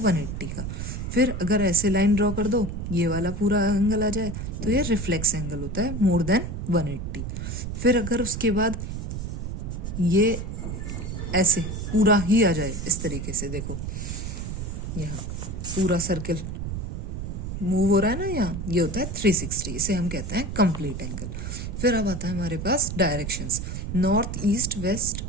का। फिर अगर ऐसे लाइन ड्रॉ कर दो, ये वाला पूरा एंगल आ जाए तो ये रिफ्लेक्स एंगल होता है मोर देन 180। फिर अगर उसके बाद ये ऐसे पूरा ही आ जाए इस तरीके से। देखो यहाँ पूरा सर्किल मूव हो रहा है ना, यहाँ ये होता है 360, इसे हम कहते हैं कंप्लीट एंगल। फिर अब आता है हमारे पास directions, north east west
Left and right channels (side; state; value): right; noise; rumble, 5 dB below the sound